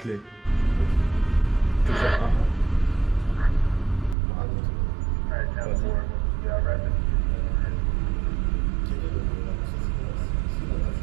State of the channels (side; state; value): left; drops out; at 4.2 s